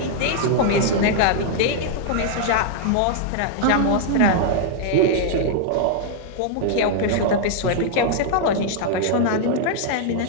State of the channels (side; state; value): both; different; correlation -0.01